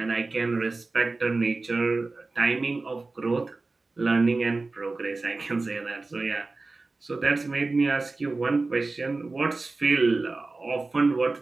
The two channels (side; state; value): left; quieter; 3.5 dB